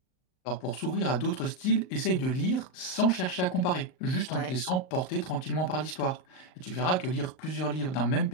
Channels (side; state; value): right; late; 38 ms